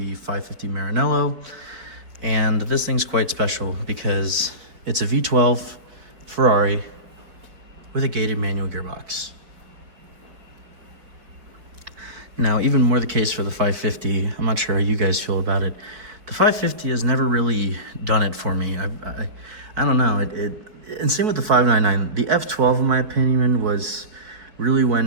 550 Maranello. And this thing's quite special because it's a V12 Ferrari with a gated manual gearbox. Now, even more the case for the 550. I'm not sure how you guys feel about it. The 550 has never really done it for me. I don't know. And same with the 599. The F12, in my opinion, was really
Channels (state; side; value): late; left; 4.9 ms